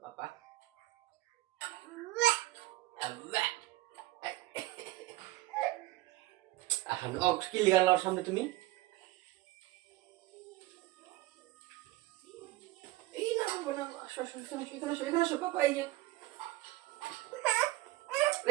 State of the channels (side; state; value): left; quieter; 18.1 dB